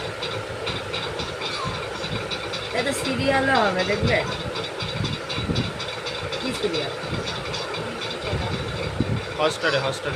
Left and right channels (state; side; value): identical; both; correlation 1.00